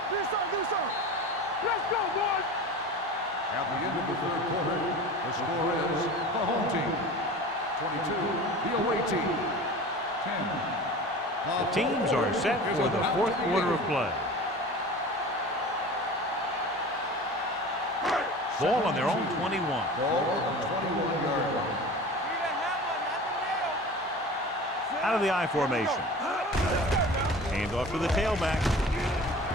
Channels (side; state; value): both; normal; correlation 0.36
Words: Do something, do something. Let's go, boys. At the end of the 3rd quarter, the score is the home team 22, the away team 10. The teams are set for the 4th quarter of play. Ball on their own 21. Ball on the 21-yard line. Out of the I formation. Hand off to the tailback.